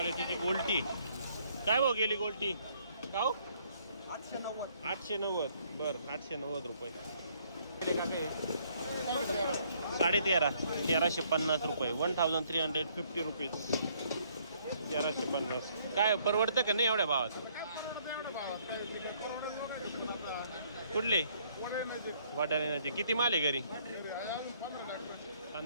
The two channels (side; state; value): both; inverted; correlation -0.66